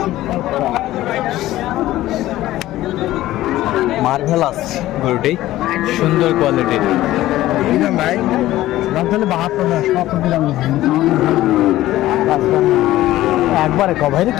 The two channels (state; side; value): quieter; right; 15.4 dB